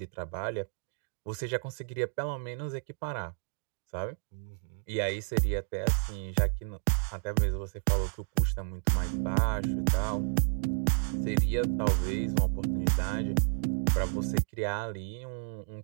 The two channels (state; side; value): silent; left; 57 dB below the other